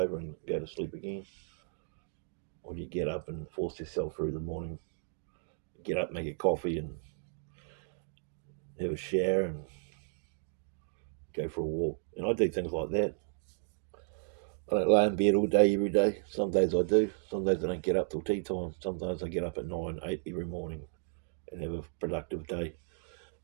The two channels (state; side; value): silent; left; digital silence